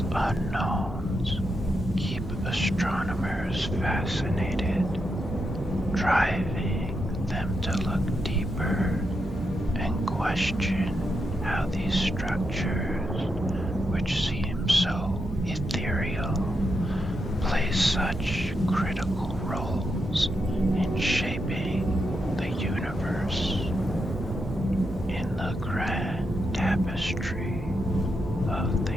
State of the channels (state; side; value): normal; both; correlation 0.84